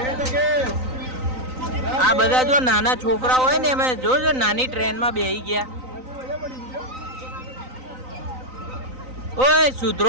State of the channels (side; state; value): left; late; 3.9 ms